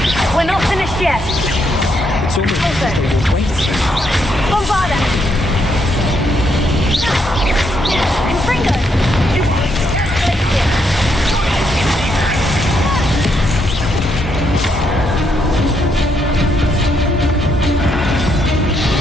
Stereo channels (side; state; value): both; normal; correlation 0.76